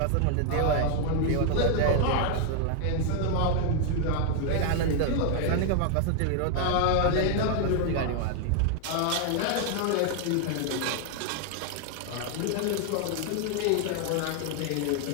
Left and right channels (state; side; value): different; both; correlation 0.00